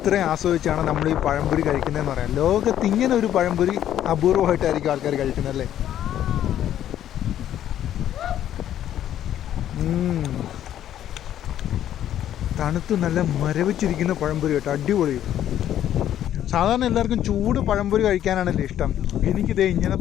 ആസ്വദിച്ചാണ് നമ്മൾ ഈ പഴംപൊരി കഴിക്കുന്നതെന്ന് പറയാം. ലോകത്ത് ഇങ്ങനെ ഒരു പഴംപൊരി അപൂർവമായിട്ടായിരിക്കും ആൾക്കാർ കഴിക്കുന്നത് അല്ലേ. തണുത്ത് നല്ല മരവിച്ചിരിക്കുന്ന പഴംപൊരി കേട്ടോ, അടിപൊളി. സാധാരണ എല്ലാവർക്കും ചൂട് പഴംപൊരി കഴിക്കാനാണല്ലോ ഇഷ്ടം. എനിക്കിതേ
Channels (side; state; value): right; quieter; 11.3 dB